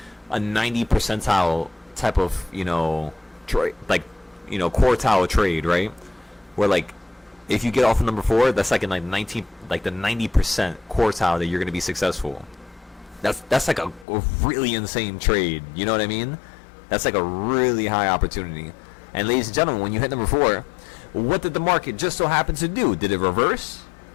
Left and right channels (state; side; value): drops out; right; at 14.1 s